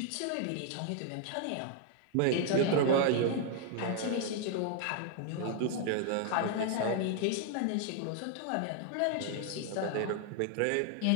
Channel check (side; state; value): both; different; correlation 0.00